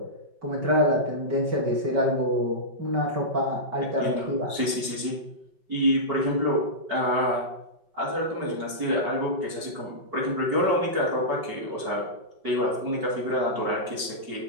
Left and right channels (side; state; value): left; late; 5.2 ms